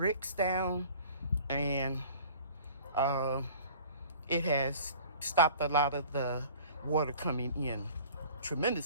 down. And it has stopped a lot of the water coming in.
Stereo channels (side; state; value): both; inverted; correlation -0.47